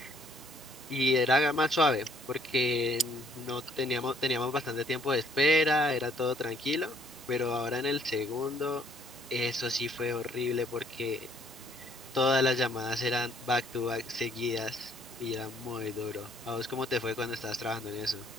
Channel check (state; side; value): normal; both; correlation 0.64